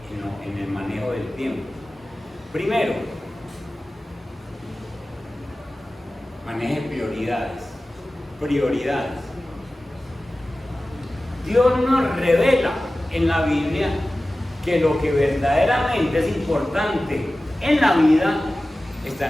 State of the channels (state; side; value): normal; both; correlation 0.96